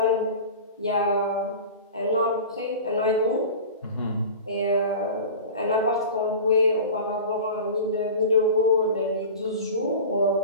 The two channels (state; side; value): inverted; both; correlation -0.34